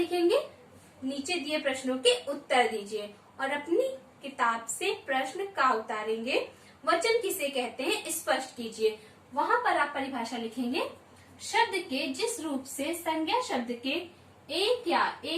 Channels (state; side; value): identical; both; correlation 1.00